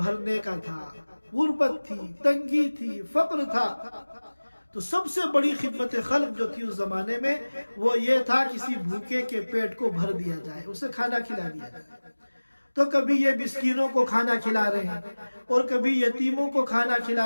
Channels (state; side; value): inverted; both; correlation -1.00